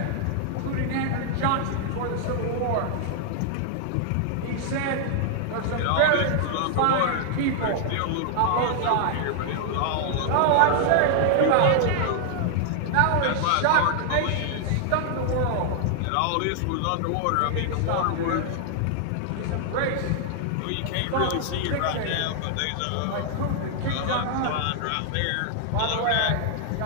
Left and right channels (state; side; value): different; both; correlation 0.00